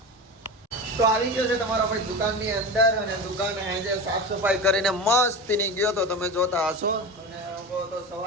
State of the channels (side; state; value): both; normal; correlation 0.26